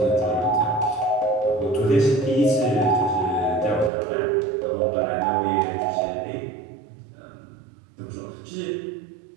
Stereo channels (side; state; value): left; drops out; at 3.9 s